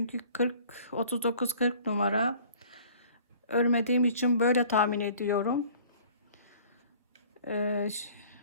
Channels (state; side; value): inverted; both; correlation -0.51